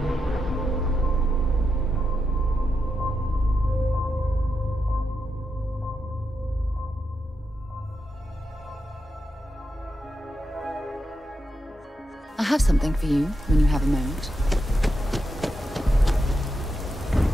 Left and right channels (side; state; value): both; normal; correlation 0.85